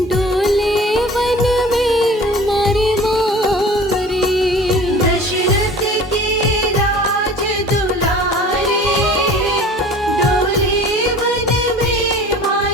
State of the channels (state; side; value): normal; both; correlation 0.43